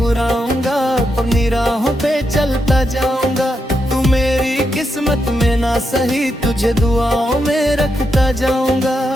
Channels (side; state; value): both; normal; correlation 0.83